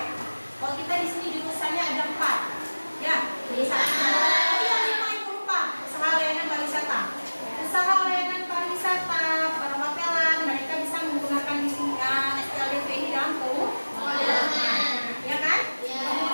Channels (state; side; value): inverted; both; correlation -1.00